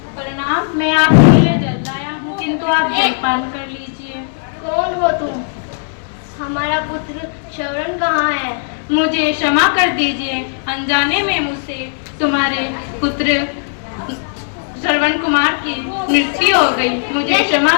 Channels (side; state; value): right; silent; digital silence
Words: प्रणाम, मैं आपके लिए जल लाया हूँ, किंतु आप जलपान कर लीजिए। कौन हो तुम? हमारा पुत्र श्रवण कहाँ है? मुझे क्षमा कर दीजिए, अनजाने में मुझसे तुम्हारे पुत्र श्रवण कुमार की मृत्यु हो गई, मुझे क्षमा